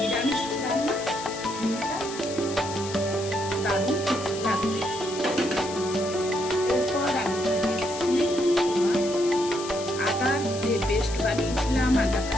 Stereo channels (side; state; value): left; noise; hiss, 11 dB below the sound